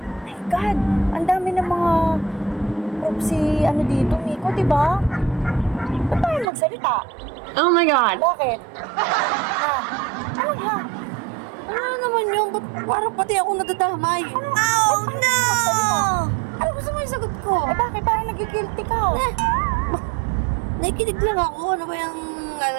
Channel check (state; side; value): drops out; left; at 6.5 s